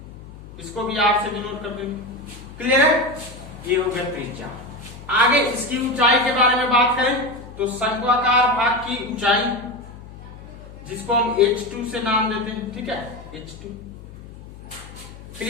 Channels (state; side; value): noise; left; hum, 16 dB below the sound